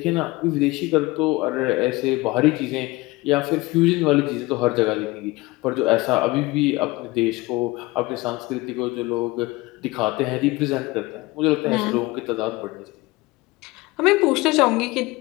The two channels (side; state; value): right; quieter; 21.6 dB